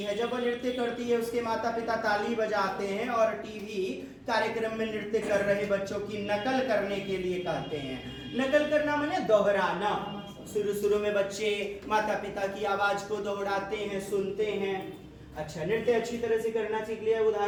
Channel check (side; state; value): both; identical; correlation 1.00